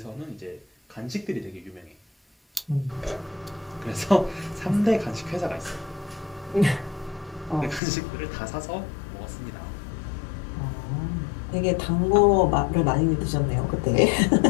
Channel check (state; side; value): drops out; right; at 7.8 s